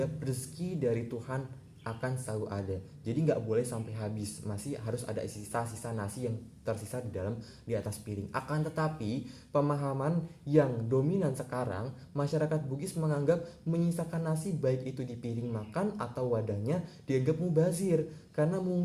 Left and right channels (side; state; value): both; identical; correlation 1.00